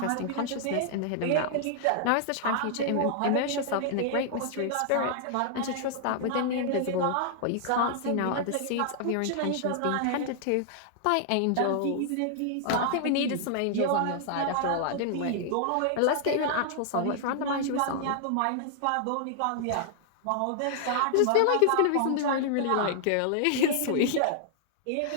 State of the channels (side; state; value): both; different; correlation -0.01